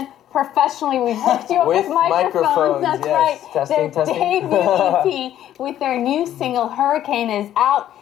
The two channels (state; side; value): quieter; right; 11.7 dB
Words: professionally, we've hooked you up with microphones. That's yes. right. Testing, Their testing. debut EP with their new single, Hurricane, is out.